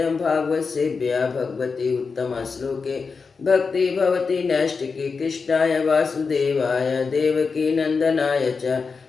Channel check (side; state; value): right; quieter; 4.9 dB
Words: भागवतसेव्या भगवती उत्तमश्लोके भक्ति भवति नैष्टिकी कृष्णाय वासुदेवाय देवकी नन्दनाय च